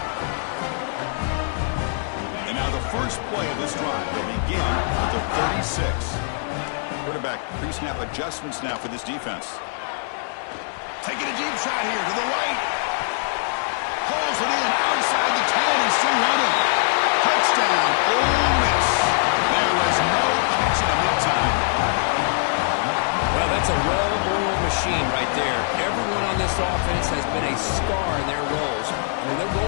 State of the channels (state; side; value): silent; right; digital silence